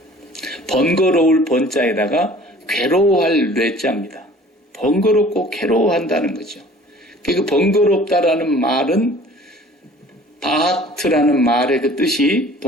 번거로울 번자에다가 괴로워할 뇌자입니다. 번거롭고 괴로워한다는 거죠. 그 번거롭다라는 말은 바하트라는 말의 그 뜻이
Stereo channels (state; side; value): normal; both; correlation 0.49